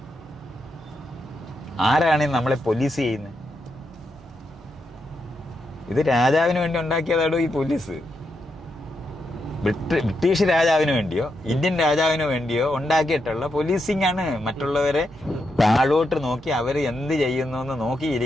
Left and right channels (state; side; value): normal; both; correlation 0.83